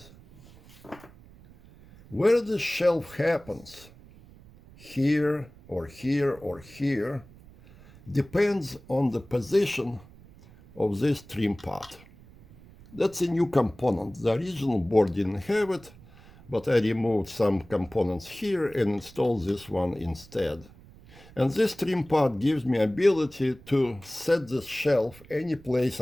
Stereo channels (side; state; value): right; noise; rumble, 22 dB below the sound